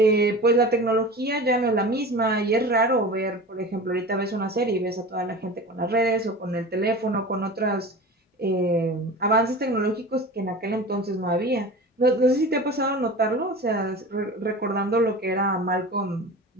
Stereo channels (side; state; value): both; normal; correlation 0.34